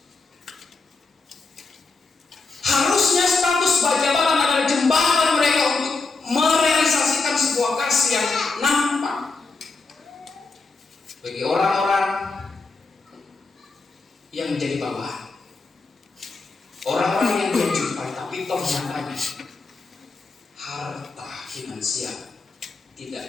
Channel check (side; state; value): right; quieter; 4.0 dB